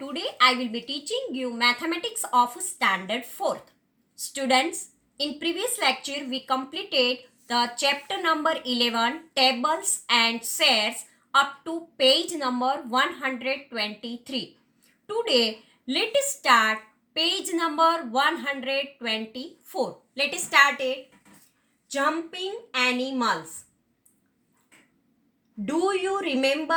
I will be teaching you mathematics of standard 4th. Students, in previous lecture we completed the chapter number 11 tables and shares up to page number 123. Today let us start page number 124. Let us start it. Jumping animals. Do you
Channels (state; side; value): identical; both; correlation 1.00